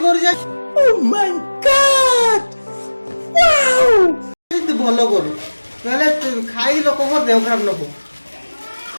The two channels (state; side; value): inverted; both; correlation -1.00